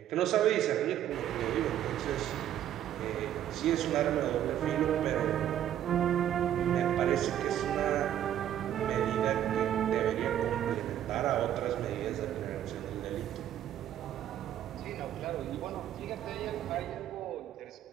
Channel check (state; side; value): quieter; left; 11.1 dB